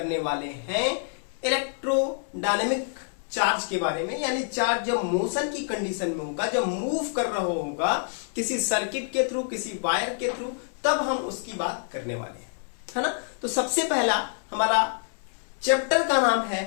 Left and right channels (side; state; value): right; silent; 60 dB below the other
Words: वाले हैं इलेक्ट्रोडायनेमिक चार्ज के बारे में। यानी चार्ज जब मोशन की कंडीशन में होगा, जब मूव कर रहा होगा किसी सर्किट के थ्रू, किसी वायर के थ्रू, तब हम उसकी बात करने वाले हैं, है ना। तो सबसे पहला हमारा चैप्टर का नाम है